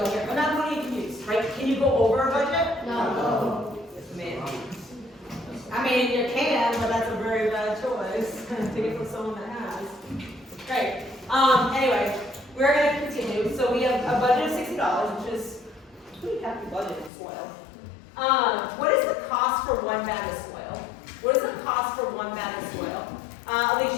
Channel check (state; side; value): drops out; right; at 17.1 s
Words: here? I'm not going to get confused, right? Can you go over a budget? No. Man. I mean, you can, but that's a very bad choice. Take it from someone that has. Great. Anyway, we're going to continue. So we have a budget of $60, which is a pretty hefty budget in soil. What is the cost for 1 bag of soil? What is the cost for 1 bag of soil?